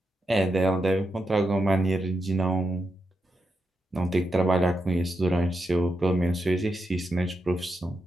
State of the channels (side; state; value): both; normal; correlation 0.86